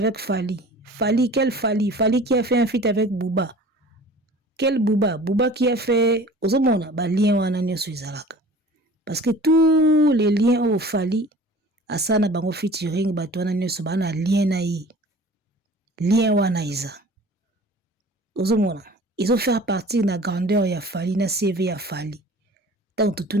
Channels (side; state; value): both; normal; correlation 0.44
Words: Fally. Fally, quel Fally? Fally qui a fait un feat avec Booba. Quel Booba? Booba qui a fait ozomona ba lien wana nyonso ezalaka. Parce que tous les liens au Fally asana bango featuring bato wana nyonso bana lien na ye. Lien wana iza. Ozomona, ils ont fait partir na grandeur ya Fally na CV ya Fally. Tant tout